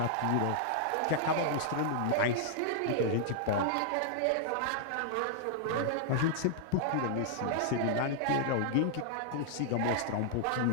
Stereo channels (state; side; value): different; both; correlation -0.01